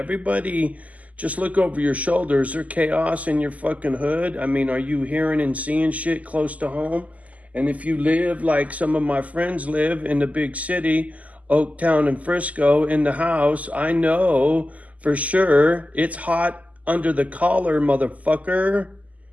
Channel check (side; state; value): left; late; 0.073 ms